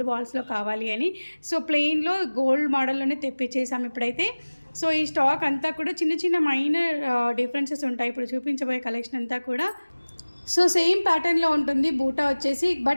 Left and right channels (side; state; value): both; inverted; correlation -1.00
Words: బాల్స్లో కావాలి అని. సో ప్లెయిన్లో గోల్డ్ మోడల్లోనే తెప్పించేసాము ఇప్పుడైతే. సో ఈ స్టాక్ అంతా కూడా చిన్న చిన్న మైనర్ డిఫరెన్సెస్ ఉంటాయి ఇప్పుడు చూపించబోయే కలెక్షన్ అంతా కూడా. సో సేమ్ ప్యాటర్న్లో ఉంటుంది బూటా వచ్చేసి,